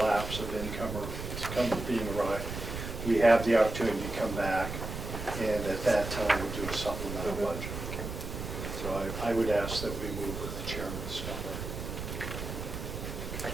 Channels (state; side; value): noise; right; rumble, 6 dB below the sound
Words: of income or being arrived, we have the opportunity to come back and at that time do a supplemental budget. So I would ask that we move with the chairman's number. I